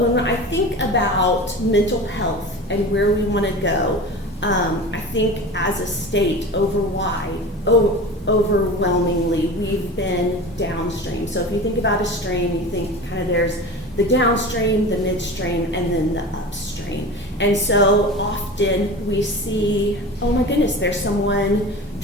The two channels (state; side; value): normal; both; correlation 0.32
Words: I think about mental health and where we want to go, I think as a state overwhelmingly we've been downstream. So if you think about a stream, you think kind of there's the downstream, the midstream, and then the upstream. And so often we see, oh my goodness, there's someone